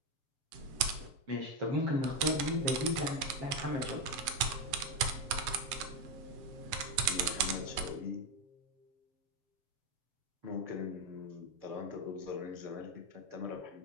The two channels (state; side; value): late; left; 7.9 ms